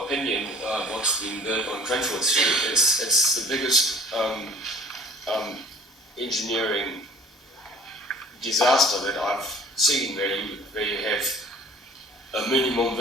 opinion, what's being built on Cranford Street, it's the biggest engineering disaster that I've seen, where you have a minimum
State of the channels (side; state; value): both; normal; correlation 0.49